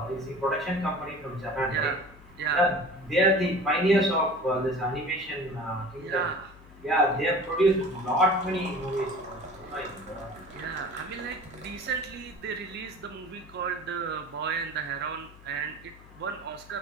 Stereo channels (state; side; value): noise; left; hum, 22 dB below the sound